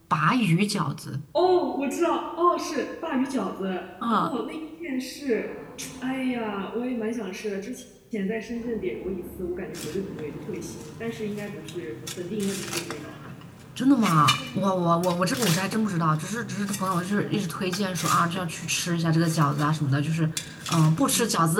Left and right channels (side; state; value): both; identical; correlation 1.00